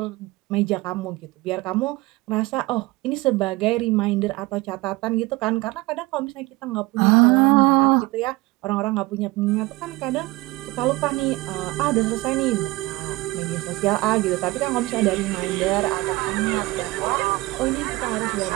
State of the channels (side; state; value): left; quieter; 21.1 dB